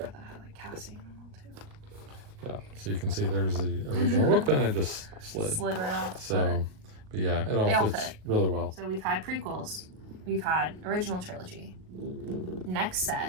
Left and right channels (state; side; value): late; left; 38 ms